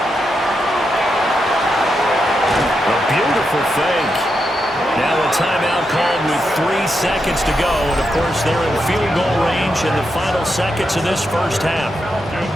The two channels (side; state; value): both; normal; correlation 0.85